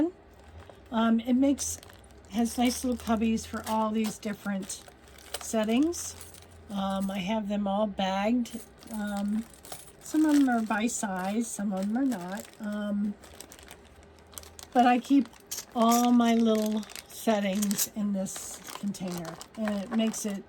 It has nice little cubbies for all these different settings. I have them all bagged. Some of them are by size, some of them are not. But I keep all my little settings in this container, and it makes it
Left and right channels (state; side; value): identical; both; correlation 1.00